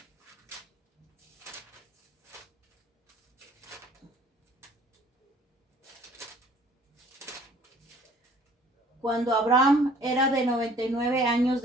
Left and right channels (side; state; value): both; normal; correlation 0.55